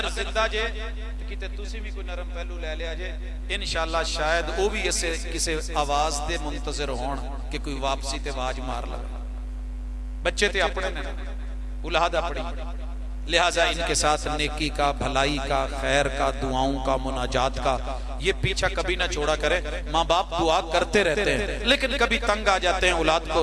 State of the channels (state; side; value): identical; both; correlation 1.00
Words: जिंदा जे किते तुसी भी कोई नरम पहलू ले लिया जे, इंशाअल्लाह शायद वो भी इससे किसी आवाज दे मुंतजर होण कि कोई वापसी ते आवाज मार लगे। बच्चे ते अपने ने, औलाद अपनी, लिहाजा इनके साथ नेकी का, भलाई का, खैर का, दुआओं का, मुनाजात का ये पीछा कभी ना छोड़ा करें। माँ बाप दुआ करते रहते हैं लेकिन कभी तंग आ जाते हैं, औलाद को